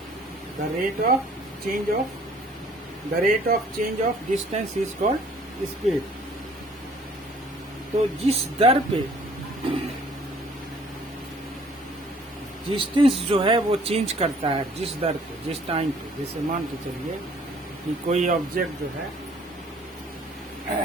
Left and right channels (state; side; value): normal; both; correlation 0.57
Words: The rate of change of distance is called speed. तो जिस दर पे डिस्टेंस जो है वो चेंज करता है, जिस दर पे, जिस टाइम पे, जैसे मान के चलिए कि कोई ऑब्जेक्ट जो है